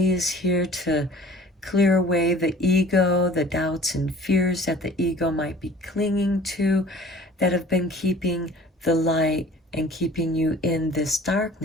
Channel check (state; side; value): normal; both; correlation 0.47